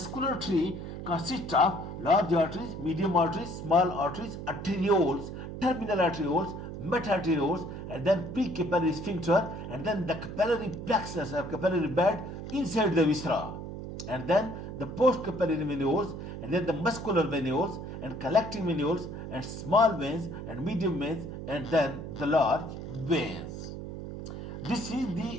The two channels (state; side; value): noise; right; hum, 8 dB below the sound